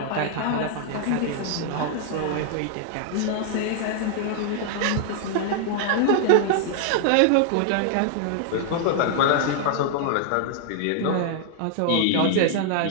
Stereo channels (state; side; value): different; both; correlation -0.01